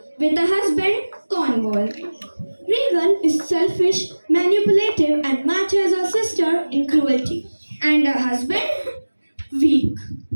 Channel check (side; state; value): both; inverted; correlation -1.00